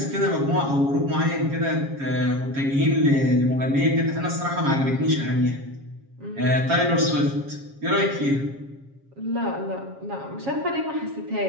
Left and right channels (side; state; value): left; late; 7.3 ms